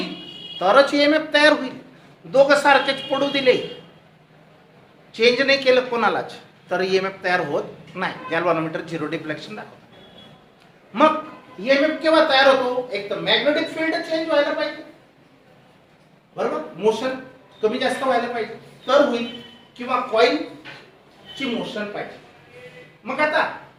तरच ईएमएफ तयार होईल. दोघं सारखेच पडू दिले चेंज नाही केलं कोणालाच तर ईएमएफ तयार होत नाही. गॅल्व्हनोमीटर झिरो डिफ्लेक्शन दाखवतो. मग ईएमएफ केव्हा तयार होतो एक तर मॅग्नेटिक फील्ड चेंज व्हायला पाहिजे बरोबर मोशन कमी जास्त व्हायला पाहिजे तर होईल किंवा कॉइल ची मोशन पाहिजे. मग आता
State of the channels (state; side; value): identical; both; correlation 1.00